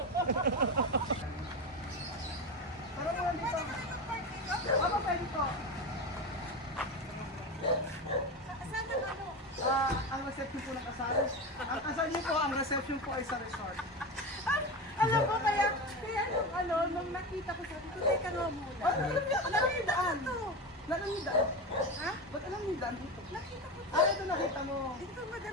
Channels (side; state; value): both; normal; correlation 0.21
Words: Parang mo dito. Ano pwede ko? Ang reception po ng kasal. Ang kasal niyo po, ang reception po ay sa resort. Alam mo, kaya nung nakita ko sabi ko, teka nga muna. Alam niyo yung daan? Alam niyo yung daan? Ha? Ba't alam niyo yung daan dito? Nakita ko. Ito nakita mo. Ito